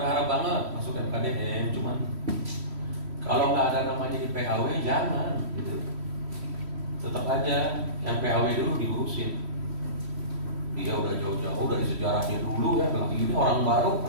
banget masuk FKDM, cuman kalau nggak ada namanya di PAW jangan gitu. Tetap aja yang PAW dulu diurusin. Dia udah jauh-jauh dari sejarahnya dulu ya, lagi ini orang baru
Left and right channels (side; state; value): left; late; 3.1 ms